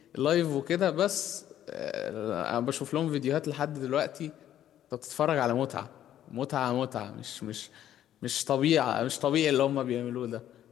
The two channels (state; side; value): quieter; right; 11.5 dB